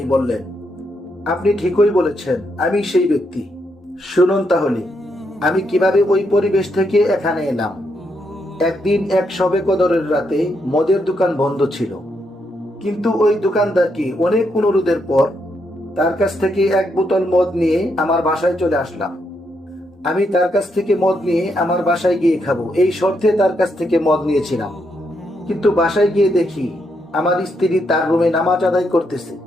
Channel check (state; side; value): normal; both; correlation 0.79